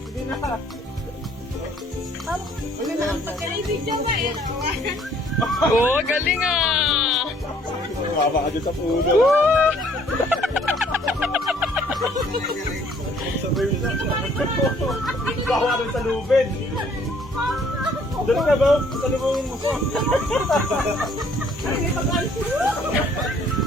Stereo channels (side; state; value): both; normal; correlation 0.61